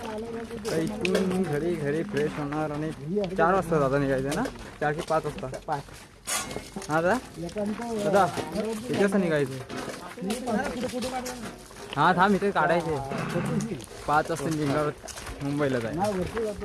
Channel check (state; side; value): identical; both; correlation 1.00